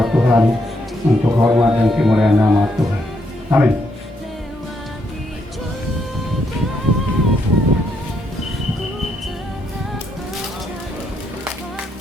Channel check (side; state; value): both; normal; correlation 0.76